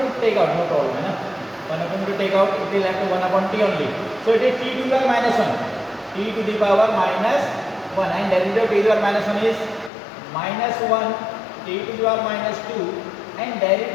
take out, no problem. 1 upon 2 take out, it will have to 1 upon t only. So it is t to the power minus 1. T to the power minus 1, and derivative of t to the power minus 1 is minus 1 t to the power minus 2, and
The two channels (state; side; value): drops out; right; at 9.9 s